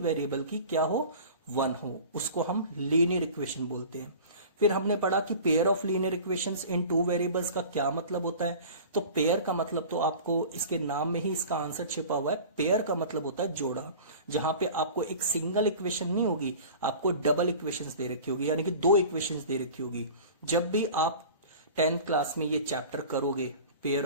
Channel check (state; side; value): inverted; both; correlation -0.40